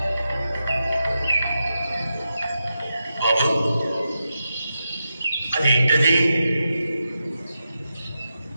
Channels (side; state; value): both; inverted; correlation -0.89